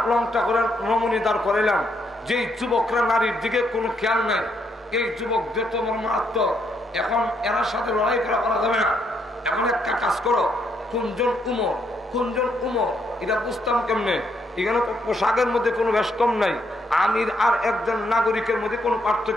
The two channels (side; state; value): both; normal; correlation 0.75